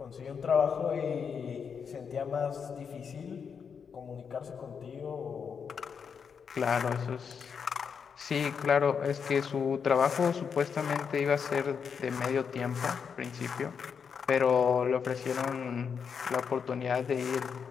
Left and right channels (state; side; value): quieter; right; 6.5 dB